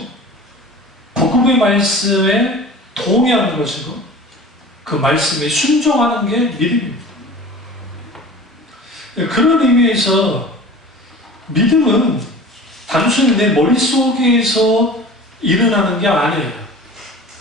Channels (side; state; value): both; normal; correlation 0.40